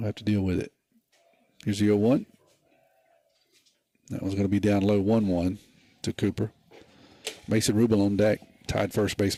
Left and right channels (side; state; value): both; identical; correlation 1.00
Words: have to deal with it. Here's the 0-1. That one's going to be down low, 1-1 to Cooper. Mason Rummel on deck, Tide first